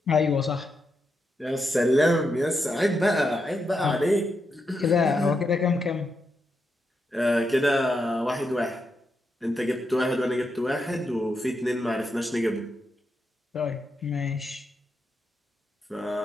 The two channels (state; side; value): normal; both; correlation 0.84